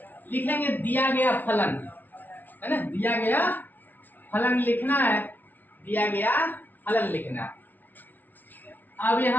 लिखेंगे दिया गया फलन, है ना, दिया गया फलन लिखना है, दिया गया फलन लिखना है। अब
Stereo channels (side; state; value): right; late; 0.085 ms